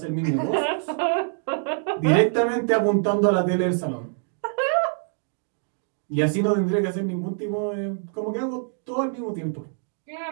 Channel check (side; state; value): left; silent; 62 dB below the other